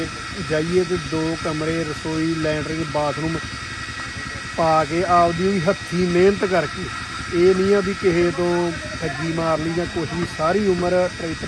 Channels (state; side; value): identical; both; correlation 1.00